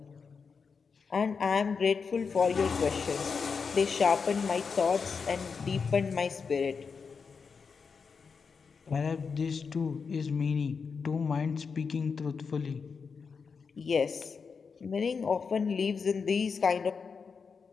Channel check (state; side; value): quieter; right; 5.5 dB